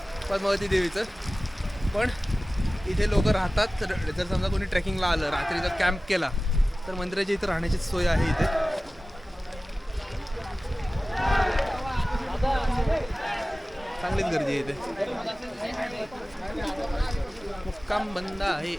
पद्मावती देवीचं, पण इथे लोक राहतात. तर जर समजा कोणी ट्रेकिंगला आलं, रात्रीचा कॅम्प केला, तर मंदिराच्या इथं राहण्याची सोय आहे इथे. चांगलीच गर्दी आहे इथे. मुक्काम बंद आहे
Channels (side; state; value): both; normal; correlation 0.97